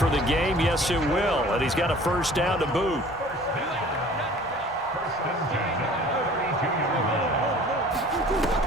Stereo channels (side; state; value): both; normal; correlation 0.48